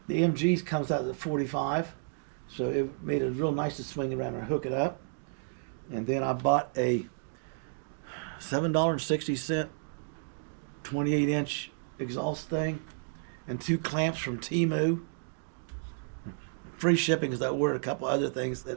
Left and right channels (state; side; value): silent; left; digital silence